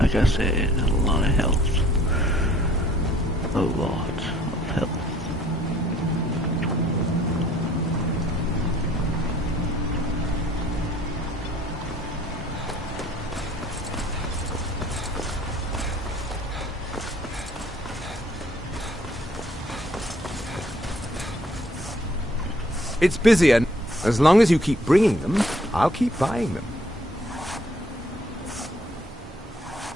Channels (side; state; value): both; normal; correlation 0.60